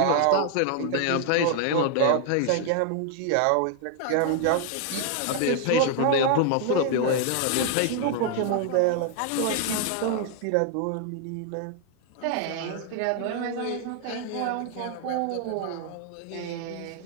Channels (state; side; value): different; both; correlation 0.00